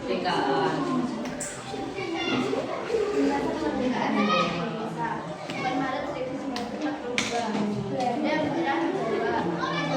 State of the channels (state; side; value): identical; both; correlation 1.00